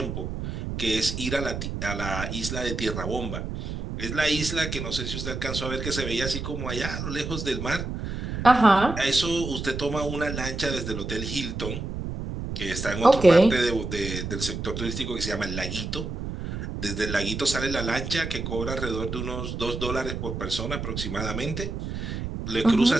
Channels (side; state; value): right; noise; rumble, 5 dB below the sound